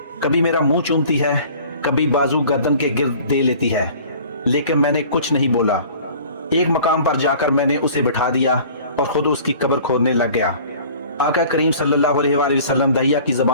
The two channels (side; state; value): both; inverted; correlation -0.47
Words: कभी मेरा मुंह चूमती है, कभी बाजू गर्दन के गिर्द दे लेती है, लेकिन मैंने कुछ नहीं बोला। एक मकाम पर जाकर मैंने उसे बिठा दिया और खुद उसकी कब्र खोदने लग गया। आका करीम सल्लल्लाहु अलैहि वसल्लम दहिया की